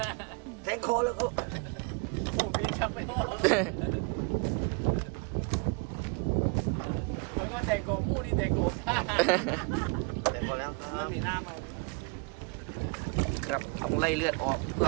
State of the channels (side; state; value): left; quieter; 31.5 dB